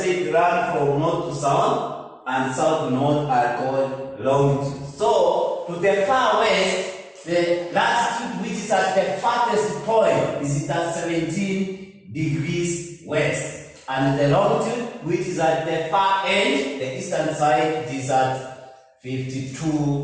run from north to south and south to north are called longitudes. So, to the far west, the latitude which is at the farthest point is at 17 degrees west. and the longitude, which is at the far end, the eastern side, is at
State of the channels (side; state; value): both; identical; correlation 1.00